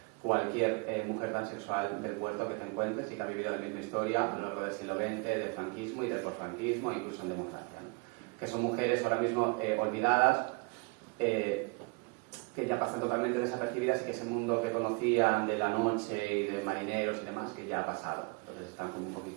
cualquier mujer transexual del puerto que te encuentres y que ha vivido la misma historia a lo largo del siglo XX, del franquismo y del posfranquismo, incluso en democracia, ¿no? Que son mujeres ahora mismo olvidadas, que ya pasan totalmente desapercibidas y que ese mundo que conocían de la noche y de marineros y demás, que ya ha pasado. Entonces están como un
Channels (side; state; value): left; quieter; 31.6 dB